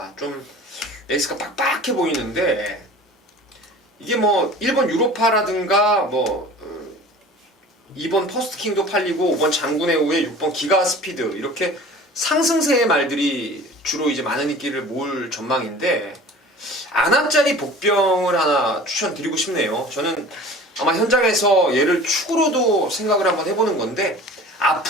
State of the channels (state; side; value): normal; both; correlation 0.42